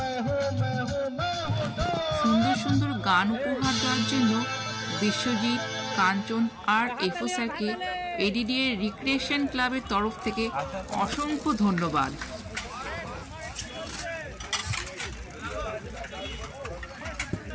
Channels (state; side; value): identical; both; correlation 1.00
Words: हूँ दो। সুন্দর সুন্দর গান উপহার দেওয়ার জন্য বিশ্বজিৎ, কাঞ্চন আর এফও স্যারকে এডিডিএ রিক্রিয়েশন ক্লাবের তরফ থেকে অসংখ্য ধন্যবাদ।